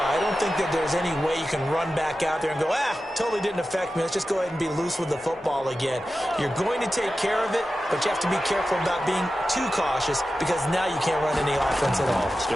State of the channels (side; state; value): both; normal; correlation 0.93